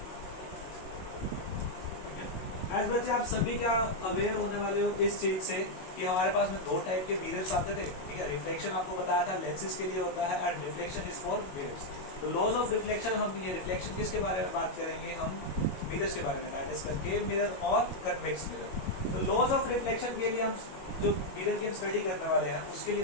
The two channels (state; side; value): late; right; 22 ms